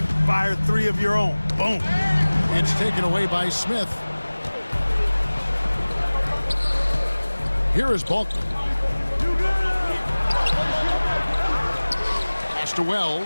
fire 3 of your own. Boom. It's taken away by Smith. Here is Balkman. Pass to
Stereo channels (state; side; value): inverted; both; correlation -1.00